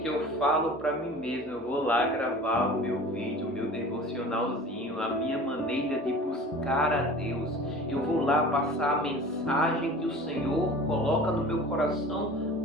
eu falo para mim mesmo, eu vou lá gravar o meu vídeo, o meu devocionalzinho, a minha maneira de buscar a Deus. Eu vou lá passar a mensagem que o Senhor coloca no meu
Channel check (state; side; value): normal; both; correlation 0.41